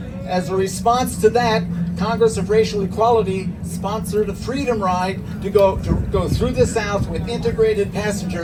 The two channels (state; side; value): identical; both; correlation 1.00